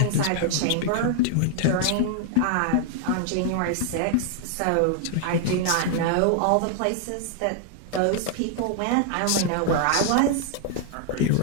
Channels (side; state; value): both; different; correlation 0.00